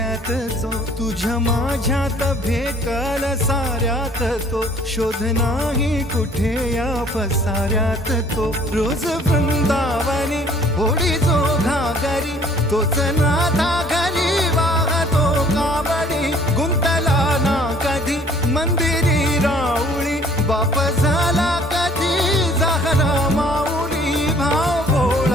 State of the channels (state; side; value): normal; both; correlation 0.56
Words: जो तुझ्या माझ्यात भेटल साऱ्यात तो शोध नाही कुठे या पसाऱ्यात तो रोज वृंदावनी होडी जो घागरी तोच नाथा घरी वाहतो कावडी गुंतला ना कधी मंदिरी राऊळी बाप झाला कधी जाहरा माऊली भाव